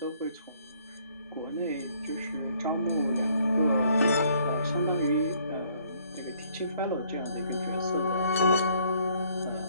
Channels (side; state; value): both; inverted; correlation -0.64